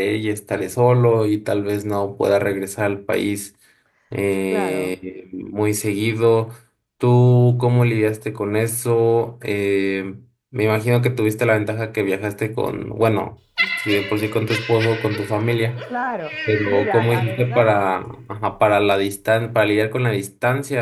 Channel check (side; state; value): both; identical; correlation 1.00